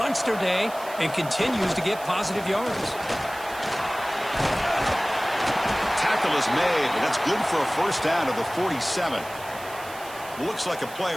day and continues to get positive yards. Tackle is made, but that's good for a first down to the 47. Looks like a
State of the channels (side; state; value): right; noise; hiss, 17 dB below the sound